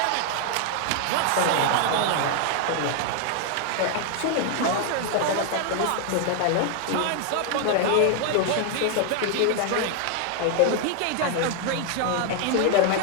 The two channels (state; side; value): different; both; correlation 0.00